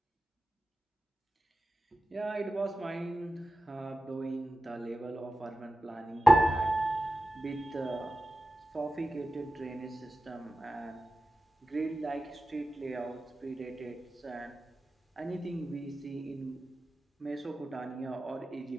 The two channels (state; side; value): normal; both; correlation 0.93